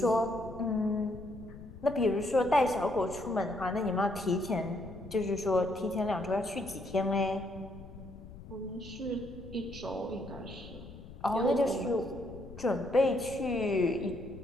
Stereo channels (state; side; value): noise; left; rumble, 15 dB below the sound